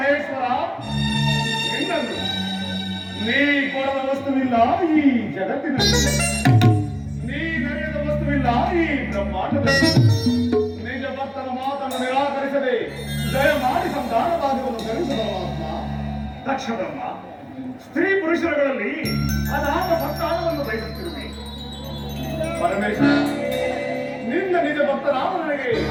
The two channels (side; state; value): both; identical; correlation 1.00